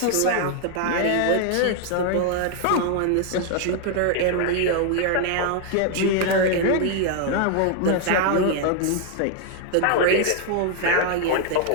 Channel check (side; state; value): both; different; correlation 0.00